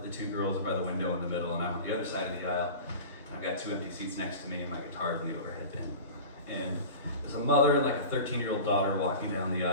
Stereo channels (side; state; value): both; inverted; correlation -0.34